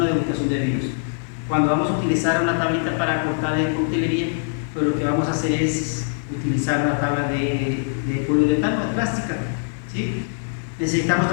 degustación de vinos. Cuando vamos a utilizar una tablita para cortar de coctelería, pues lo que vamos a hacer es utilizar una tabla de poliuretano, de plástica, ¿sí? Necesitamos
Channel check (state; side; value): silent; right; 57 dB below the other